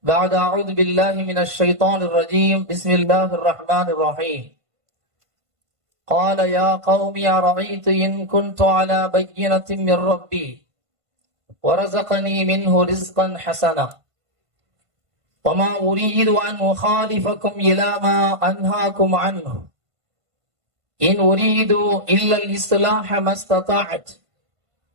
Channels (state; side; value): late; left; 1.5 ms